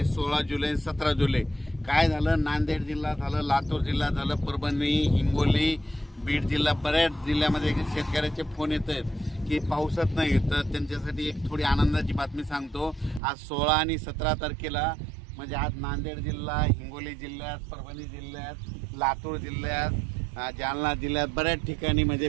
16 जुलै 17 जुलै काय झालं, नांदेड जिल्हा झालं, लातूर जिल्हा झालं, परभणी, हिंगोली, बीड जिल्हा, बऱ्याच जिल्ह्यामध्ये शेतकऱ्याचे फोन येत आहेत की पावसात नाही। तर त्यांच्यासाठी एक थोडी आनंदाची बातमी सांगतो। आज 16 आणि 17 तारखेला म्हणजे आज नांदेड जिल्हा, हिंगोली जिल्ह्यात, परभणी जिल्ह्यात, लातूर जिल्ह्यात, जालना जिल्ह्यात बऱ्याच ठिकाणी म्हणजे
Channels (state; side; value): drops out; left; at 13.2 s